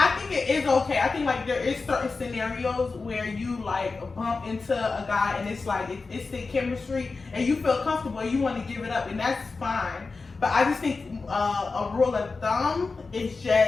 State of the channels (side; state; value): right; quieter; 4.1 dB